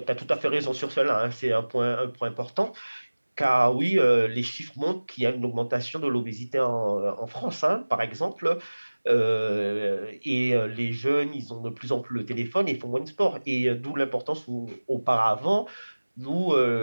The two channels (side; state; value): both; inverted; correlation -1.00